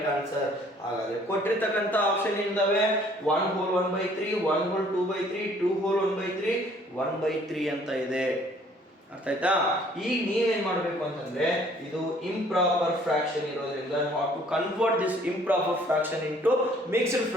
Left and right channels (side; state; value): both; normal; correlation 0.58